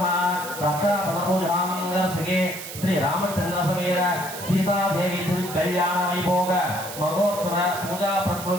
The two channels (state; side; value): noise; right; hiss, 10 dB below the sound